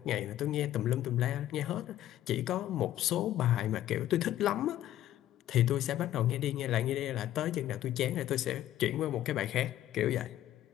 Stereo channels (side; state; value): right; quieter; 12.9 dB